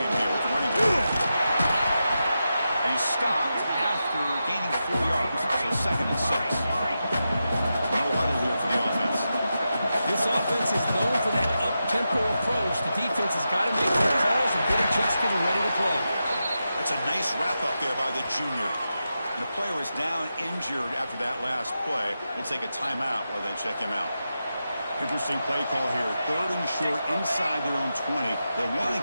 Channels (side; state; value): both; inverted; correlation -0.89